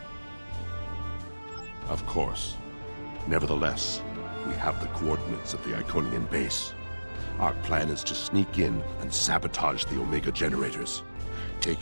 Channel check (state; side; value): inverted; both; correlation -1.00